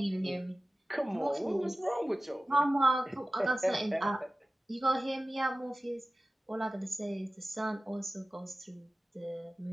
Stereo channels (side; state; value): both; normal; correlation 0.96